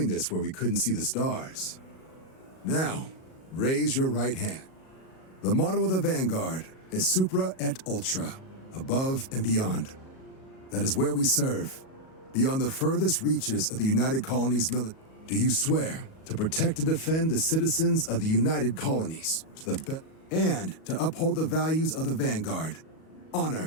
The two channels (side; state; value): right; late; 37 ms